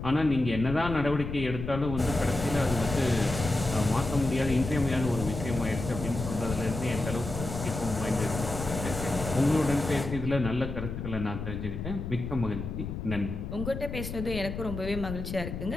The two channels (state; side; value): noise; left; rumble, 6 dB below the sound